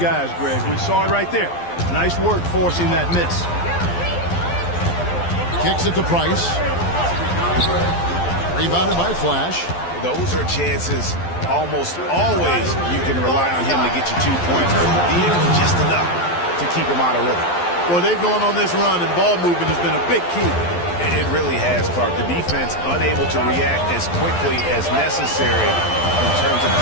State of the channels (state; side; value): late; right; 12 ms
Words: Greg. We saw it right there. Nice work forcing that miss. Kicks it to Price. Rebounded by Flash. Those are chances almost always you can rely on him to get you 2 points. But he did just enough to keep him out of rhythm. Well, they've gone on this run, and ball movement has been a big key. It really has, Clark. The defense unable to react as quickly as necessary in terms of